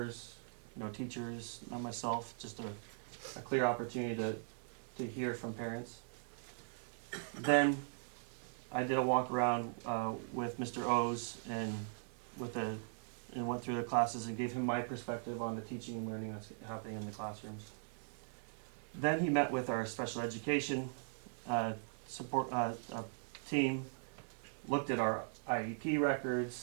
no teachers, not myself, just a clear opportunity to hear from parents. Then I did a walk around with Mr. O's and went through the classes and gave him my perspective on the teaching and learning that's happening in the classrooms. Then he met with our special education support team, looked at our IEP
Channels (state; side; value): silent; left; digital silence